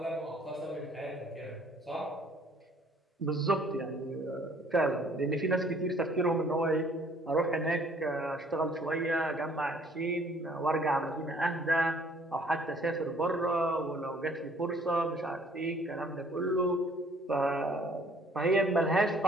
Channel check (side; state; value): both; normal; correlation 0.59